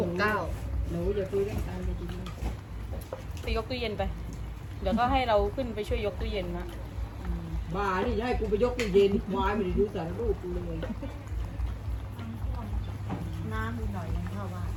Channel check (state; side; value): identical; both; correlation 1.00